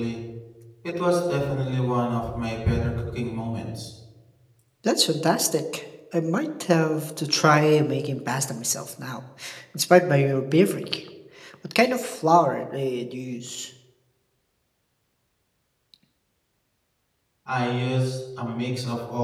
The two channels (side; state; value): both; identical; correlation 1.00